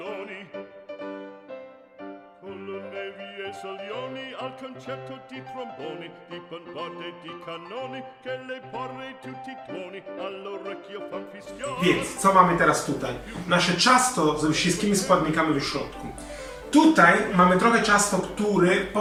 con le nevi e salioni, al concerto di tromboni, di bombarde, di cannoni, che le porre tutti i tuoni, all'orecchio fan fischioni. Więc, co mamy teraz tutaj? Nasze ciasto ze wszystkimi składnikami w środku. Tutaj mamy trochę ciasto, które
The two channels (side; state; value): both; identical; correlation 1.00